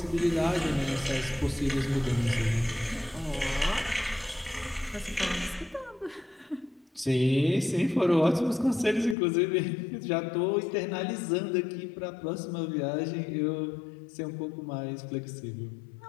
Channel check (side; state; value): right; drops out; at 9.2 s